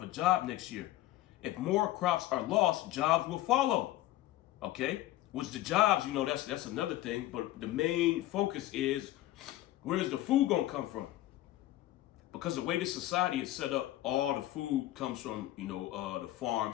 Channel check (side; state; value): right; quieter; 15.4 dB